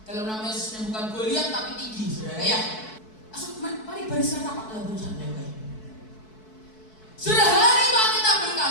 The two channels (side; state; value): right; late; 4.6 ms